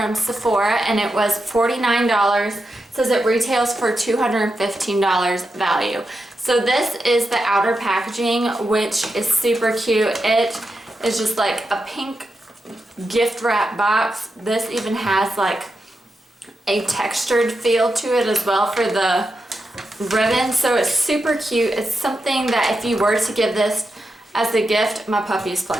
Sephora and it was $49. It says it retails for $215 value. So this is the outer packaging, which is super cute. It is just like a pink gift wrap box. This even has like a textured feel to it as well for the ribbon, so it's super cute. It's something that if you were to give this as a gift, my puppy is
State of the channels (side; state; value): both; normal; correlation 0.88